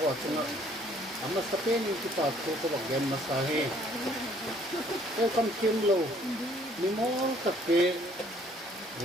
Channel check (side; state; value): both; normal; correlation 0.61